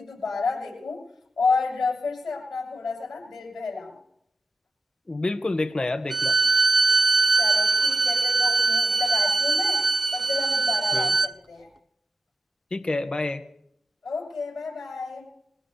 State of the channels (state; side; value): normal; both; correlation 0.89